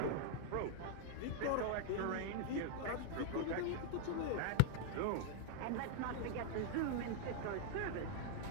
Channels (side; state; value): both; different; correlation 0.00